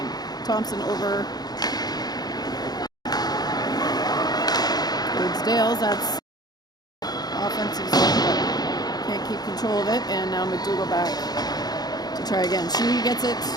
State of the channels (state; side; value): late; right; 0.19 ms